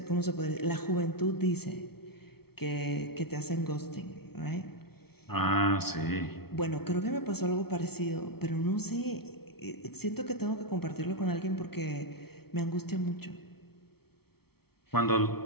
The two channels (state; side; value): late; right; 0.95 ms